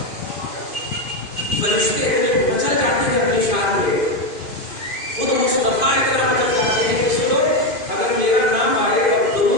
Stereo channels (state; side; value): late; right; 2.5 ms